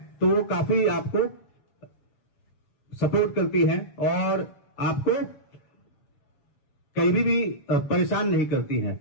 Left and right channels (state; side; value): late; right; 7.3 ms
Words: तो वो काफी आपको सपोर्ट करती है और आपको कहीं भी परेशान नहीं करती है।